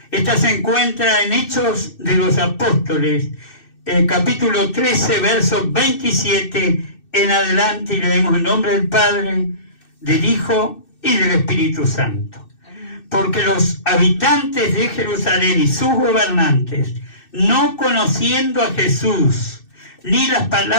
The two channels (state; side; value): late; right; 2.6 ms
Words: Esta se encuentra en Hechos de los Apóstoles, capítulo 13, versos 27 en adelante, y leemos en nombre del Padre, del Hijo y del Espíritu Santo. Porque los habitantes de Jerusalén y sus gobernantes, no conociendo a Jesús, ni las